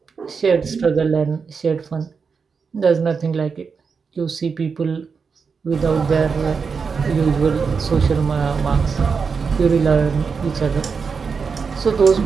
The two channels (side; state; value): left; quieter; 5.5 dB